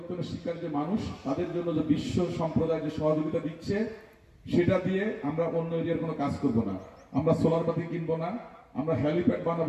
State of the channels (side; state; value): both; identical; correlation 1.00